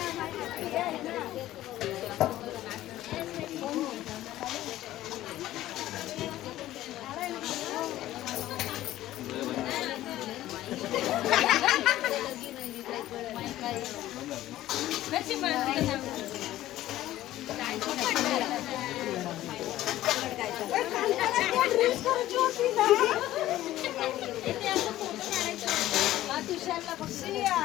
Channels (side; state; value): right; quieter; 14.6 dB